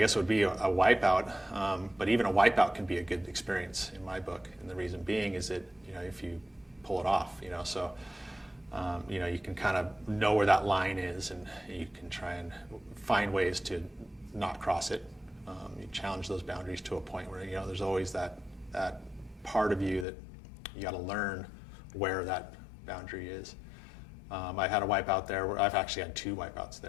would be a wipeout, but even a wipeout can be a good experience in my book. And the reason being is that, if you pull it off, so you can kind of know where that line is, and you can try and find ways to not cross it. You challenge those boundaries to a point where, there's always that part of you that you got to learn where that boundary is. I had a wipeout there where I've actually had two wipeouts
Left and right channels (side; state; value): right; drops out; at 20.1 s